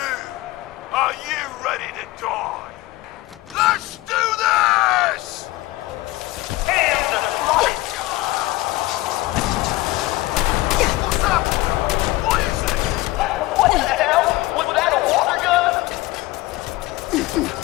are you ready to die? Let's do this! Hands and flight! What's up? What is it? What the hell? Was that a water gun?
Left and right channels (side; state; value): right; quieter; 18.9 dB